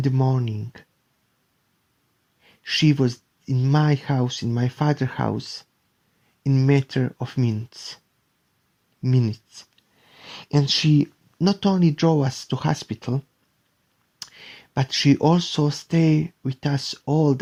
the morning. She was in my house, in my father's house, in a matter of minutes. And she not only drove us to hospital, but she also stayed with us all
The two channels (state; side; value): identical; both; correlation 1.00